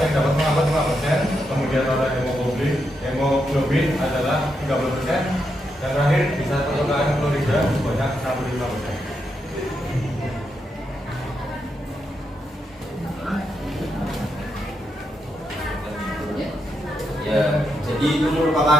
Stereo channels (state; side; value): normal; both; correlation 0.83